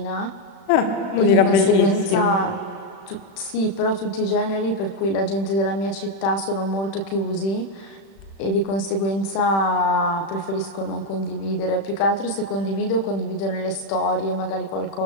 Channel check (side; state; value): right; late; 36 ms